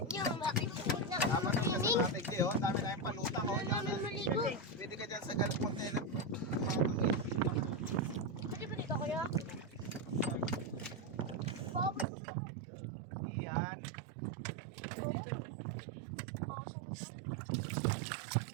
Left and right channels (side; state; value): left; drops out; at 12.1 s